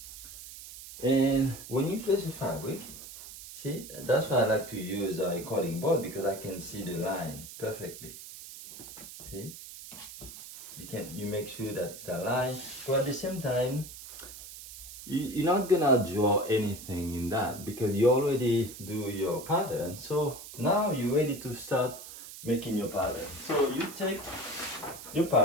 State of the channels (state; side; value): noise; right; hiss, 13 dB below the sound